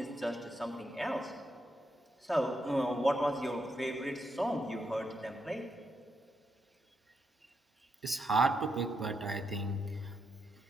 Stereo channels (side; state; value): both; normal; correlation 0.82